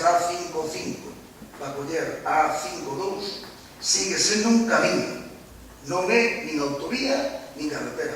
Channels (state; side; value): identical; both; correlation 1.00